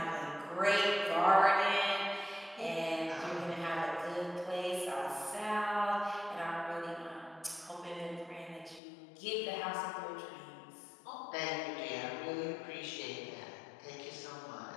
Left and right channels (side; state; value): right; drops out; at 8.8 s